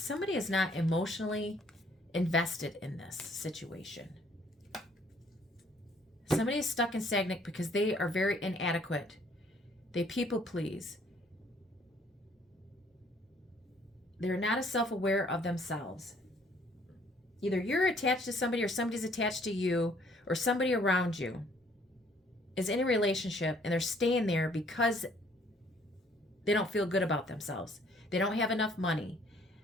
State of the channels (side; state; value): both; normal; correlation 0.62